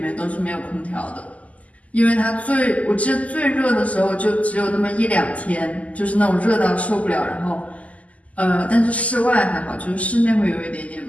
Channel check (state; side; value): late; right; 0.071 ms